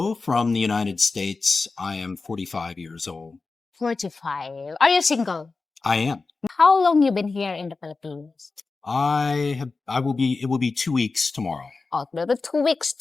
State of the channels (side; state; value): right; quieter; 4.0 dB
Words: from the United States. I am 45 years old. 45. Are you single? I am. How long you been here in the Philippines? It will be 2 weeks tomorrow. Oh, maybe 2 weeks